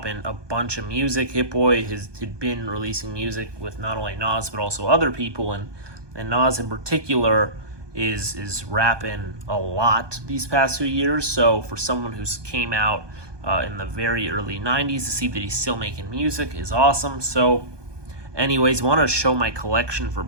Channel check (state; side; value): late; left; 1.2 ms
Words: a bunch of music. Hitboy had been releasing music with not only Nas but also other people, and Nas in particular is rapping a lot these past few years. So for someone who's came out in the very early 90s to see that he's still making music is awesome. So anyways, I want to show my collection for